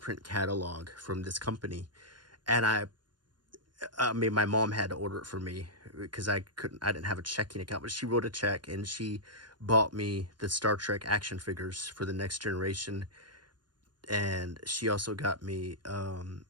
catalog from this company. And I mean, my mom had to order it for me because I didn't have a checking account, but she wrote a check and she bought me the Star Trek action figures for The Next Generation. And she also got me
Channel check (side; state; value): left; late; 0.71 ms